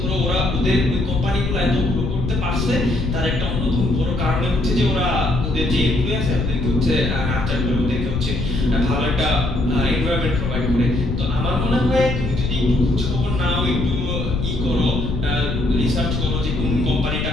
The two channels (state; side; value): noise; left; rumble, 2 dB below the sound